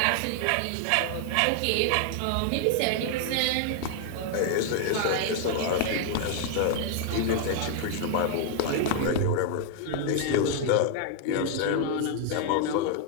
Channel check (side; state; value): both; different; correlation 0.00